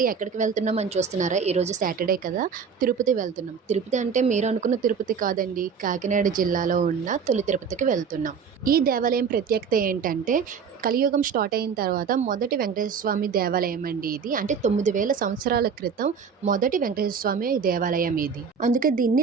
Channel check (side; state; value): left; quieter; 6.3 dB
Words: ఎక్కడికి వెళ్తున్నాం అని చూస్తున్నారా? ఈరోజు సాటర్‌డే కదా! తిరుపతి వెళ్తున్నాం. తిరుపతి అంటే మీరు అనుకున్న తిరుపతి కాదండి. కాకినాడ జిల్లాలో ఉన్న తొలి తిరుపతికి వెళ్తున్నాం. ఈ దేవాలయం ప్రత్యేకత ఏంటంటే కలియుగం స్టార్ట్ అయిన తర్వాత మొదటి వెంకటేశ్వర స్వామి దేవాలయం అండి ఇది. అంటే 9000 సంవత్సరాల క్రితం మొదటి వెంకటేశ్వర స్వామి దేవాలయం ఇది. అందుకే దీన్ని